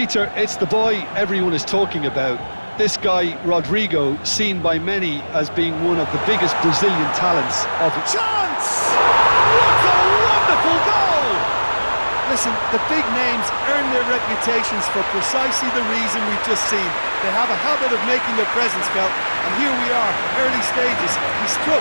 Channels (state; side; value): inverted; both; correlation -1.00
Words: it's the boy everyone is talking about. This guy, Rodrigo, seen by many as being one of the biggest Brazilian talents of it. Chance! What a wonderful goal! Listen, the big names earn their reputations for precisely the reason we've just seen. They have a habit of making their presence felt, and here we are, early stages. He